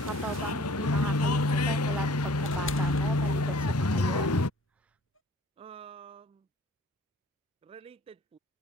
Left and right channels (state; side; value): normal; both; correlation 0.53